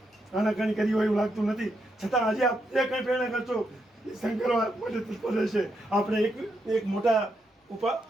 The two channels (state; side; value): normal; both; correlation 0.81